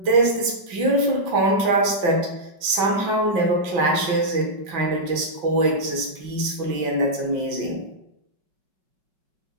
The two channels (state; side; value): late; left; 5.3 ms